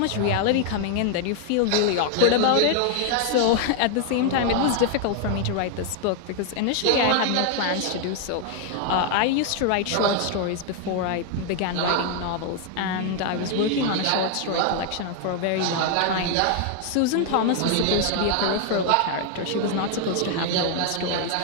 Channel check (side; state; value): both; different; correlation 0.01